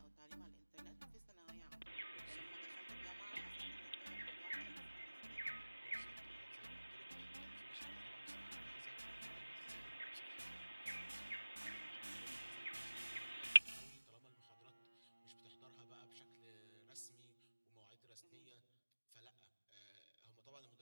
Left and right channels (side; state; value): both; inverted; correlation -1.00